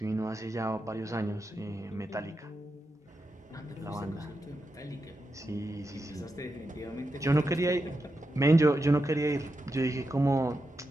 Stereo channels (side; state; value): both; normal; correlation 0.87